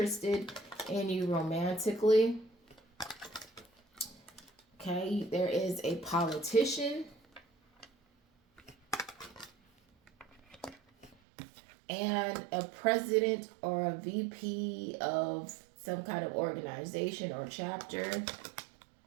in you romantically. Okay, there is a politician and a president or a VP of some kind of organization or chapter.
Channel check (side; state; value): left; drops out; at 11.2 s